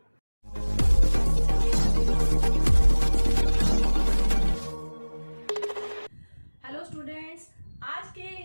Hello students, आज के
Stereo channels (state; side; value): inverted; both; correlation -1.00